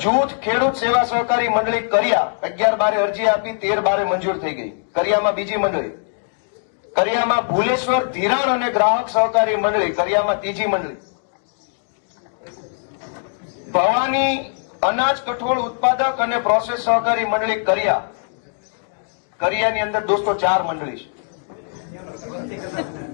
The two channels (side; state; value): right; silent; digital silence